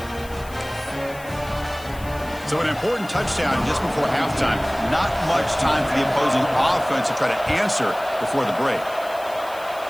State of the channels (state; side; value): noise; left; hiss, 20 dB below the sound